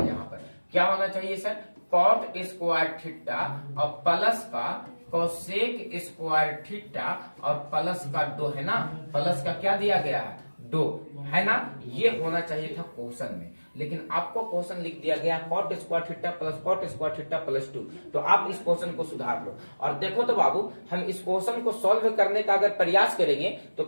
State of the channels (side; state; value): both; inverted; correlation -1.00